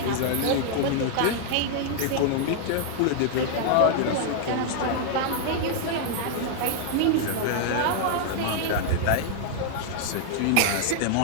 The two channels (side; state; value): both; different; correlation -0.01